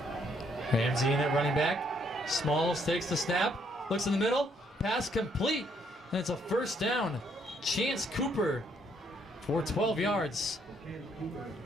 Ramsey in at running back. Smalls takes the snap, looks in the middle, pass complete, and it's a first down. Chance Cooper for 12 yards.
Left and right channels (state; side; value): normal; both; correlation 0.70